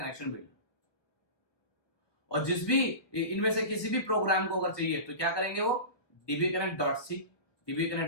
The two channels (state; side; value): late; right; 1.0 ms